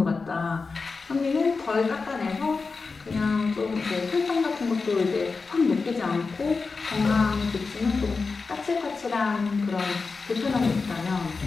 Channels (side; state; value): right; quieter; 4.4 dB